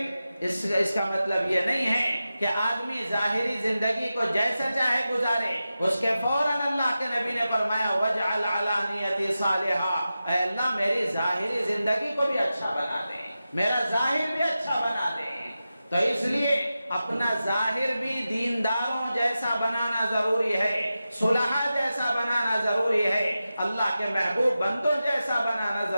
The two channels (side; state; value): both; inverted; correlation -0.93